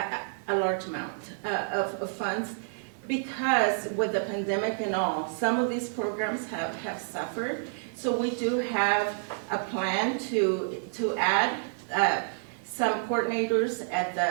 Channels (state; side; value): silent; left; 55 dB below the other